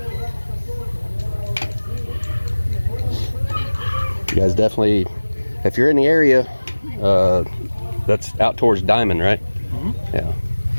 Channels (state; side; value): inverted; both; correlation -1.00